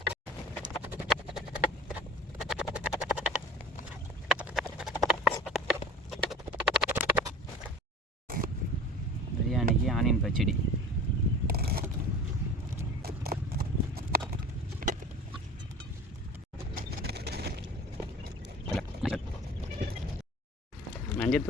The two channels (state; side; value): normal; both; correlation 0.39